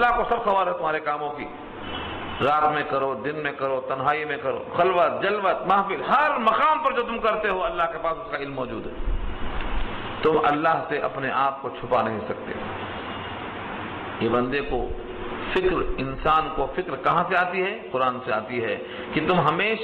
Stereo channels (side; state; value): both; identical; correlation 1.00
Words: کو سب خبر ہے تمہارے کاموں کی، رات میں کرو، دن میں کرو، تنہائی میں کرو، خلوت جلوت محفل، ہر مقام پر جو تم کرتے ہو اللہ کے پاس اس کا علم موجود ہے۔ تم اللہ سے اپنے آپ کو چھپا نہیں سکتے۔ یہ بندے کو فکر، انسان کو فکر کہاں سے آتی ہے؟ قرآن سے آتی ہے کہ تم